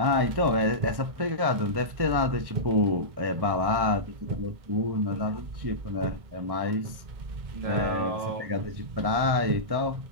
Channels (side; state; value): left; late; 1.6 ms